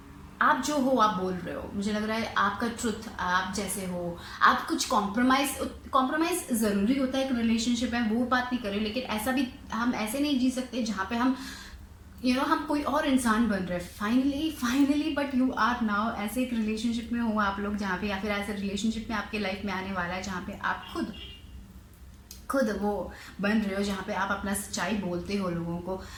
आप जो हो आप बोल रहे हो, मुझे लग रहा है आपका ट्रुथ, आप जैसे हो, आप कुछ कॉम्प्रोमाइज ज़रूरी होता है एक रिलेशनशिप में, वो बात नहीं कर रही, लेकिन ऐसा भी हम ऐसे नहीं जी सकते जहाँ पे हम हम कोई और इंसान बन रहे हैं finally, but you are now ऐसे एक रिलेशनशिप में हो आप लोग जहाँ पे, या फिर ऐसे रिलेशनशिप में आपके लाइफ में आने वाला है जहाँ पे आप खुद वो बन रहे हो, जहाँ पे आप अपना सच्चाई बोलते हो लोगों को,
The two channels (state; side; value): identical; both; correlation 1.00